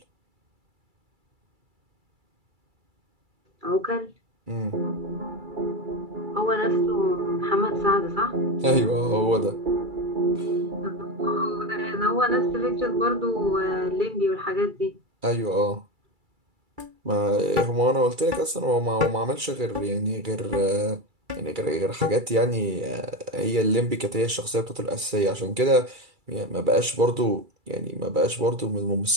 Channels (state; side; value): late; left; 2.3 ms